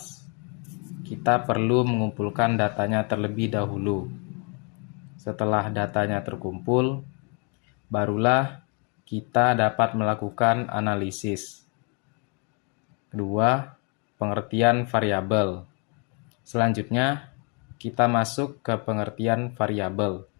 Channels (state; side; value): quieter; right; 35.5 dB